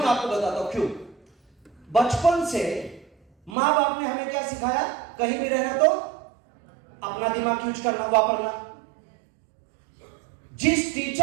आपको बताता हूं क्यों। बचपन से मां बाप ने हमें क्या सिखाया, कहीं भी रहना तो अपना दिमाग यूज करना, वापरना। जिस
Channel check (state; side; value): drops out; left; at 3.6 s